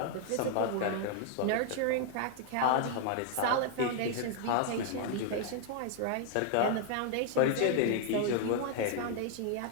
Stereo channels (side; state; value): both; different; correlation 0.00